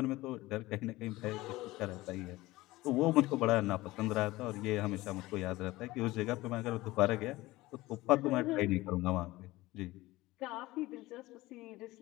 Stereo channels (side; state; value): right; quieter; 18.9 dB